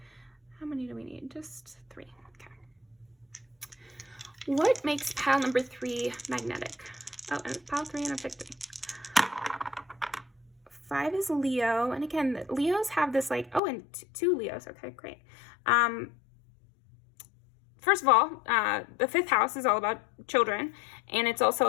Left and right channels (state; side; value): drops out; right; at 13.6 s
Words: How many do we need? Just 3. Okay. What makes pile number 3 magnetic? Oh, and it's pile 3 and I picked 3. 5 is Leo. And again, Leos have this like, and 2 Leos. Okay, great. First of all, the 5th house is all about children, and it's